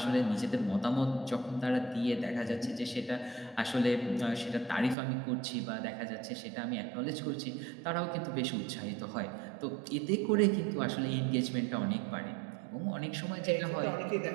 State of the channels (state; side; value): drops out; left; at 5.0 s